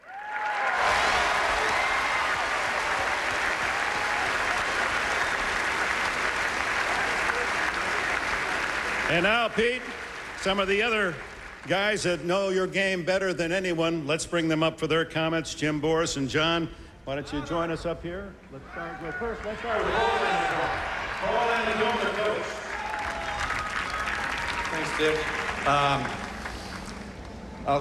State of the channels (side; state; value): both; identical; correlation 1.00